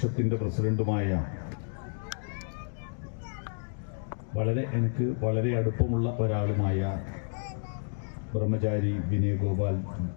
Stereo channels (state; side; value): silent; right; digital silence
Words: പ്രസിഡന്റുമായ എനിക്ക് വളരെ അടുപ്പമുള്ള ഒരാളുമായ ബ്രഹ്മചാരി വിനയ് ഗോപാൽ